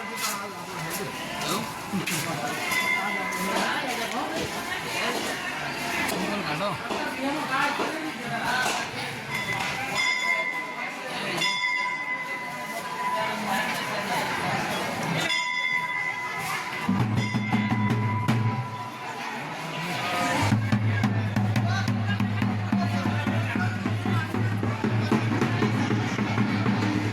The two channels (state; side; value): identical; both; correlation 1.00